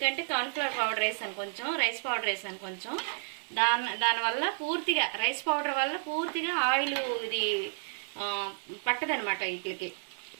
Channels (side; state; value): left; silent; digital silence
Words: కార్న్ఫ్లవర్ పౌడర్ వేసాను కొంచెం, రైస్ పౌడర్ వేసాను కొంచెం, దానివల్ల పూర్తిగా రైస్ పౌడర్ వల్ల పూర్తిగా ఆయిల్ ఇది పట్టదనమాట, వీటికి